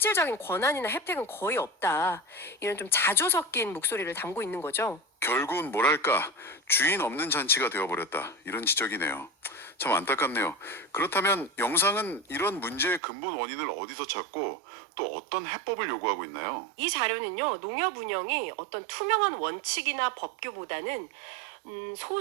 권한이나 혜택은 거의 없다. 이런 좀 자조 섞인 목소리를 담고 있는 거죠. 결국은 뭐랄까 주인 없는 잔치가 되어버렸다 이런 지적이네요. 참 안타깝네요. 그렇다면 영상은 이런 문제의 근본 원인을 어디서 찾고 또 어떤 해법을 요구하고 있나요? 이 자료는요, 농협 운영이 어떤 투명한 원칙이나 법규보다는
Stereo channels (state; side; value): drops out; left; at 13.0 s